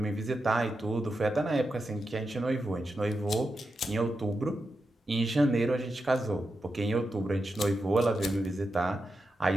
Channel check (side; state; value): both; normal; correlation 0.88